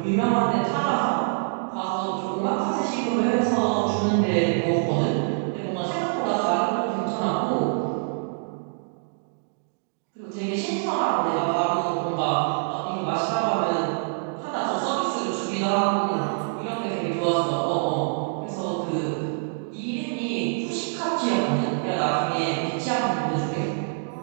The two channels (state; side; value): silent; left; digital silence